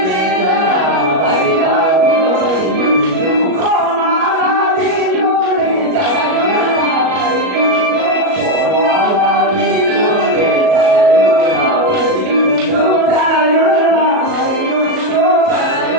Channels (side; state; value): left; late; 37 ms